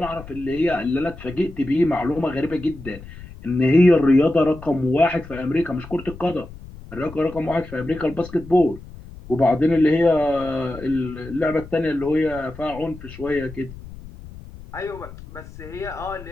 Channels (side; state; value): left; noise; rumble, 16 dB below the sound